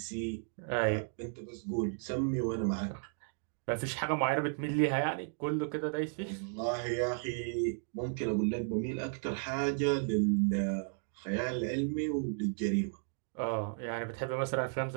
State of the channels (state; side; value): silent; left; 55 dB below the other